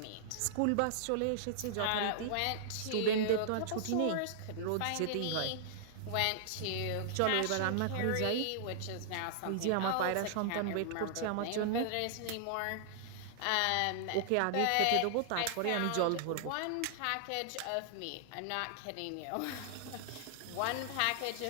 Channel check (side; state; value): both; different; correlation -0.01